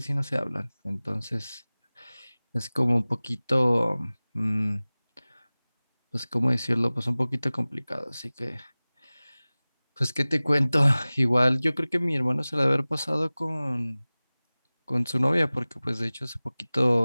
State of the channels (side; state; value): both; inverted; correlation -0.99